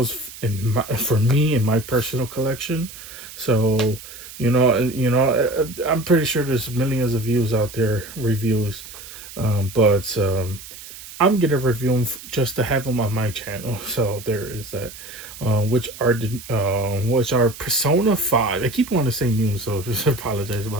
for me in my personal collection. So I'm pretty sure there's millions of views out there, reviews, but I'm gonna review them just to have them on my channel. So there is that. Which are Persona 5. I keep wanting to say new, so just apologize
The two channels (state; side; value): noise; right; hiss, 15 dB below the sound